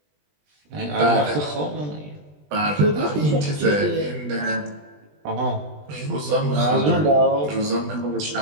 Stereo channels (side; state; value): left; late; 20 ms